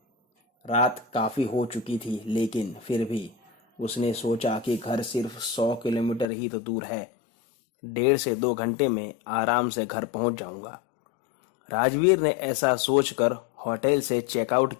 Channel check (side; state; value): right; drops out; at 6.2 s